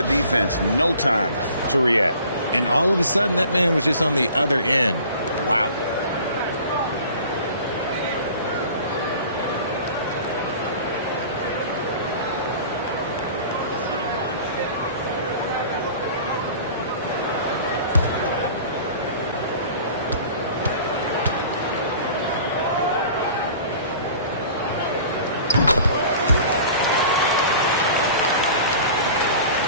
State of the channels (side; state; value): both; inverted; correlation -0.45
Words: defense no time to react. And all of a sudden, that man was just on the other end. Wow.